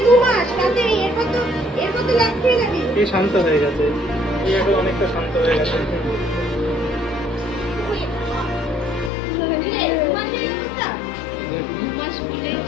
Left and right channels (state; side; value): drops out; right; at 9.1 s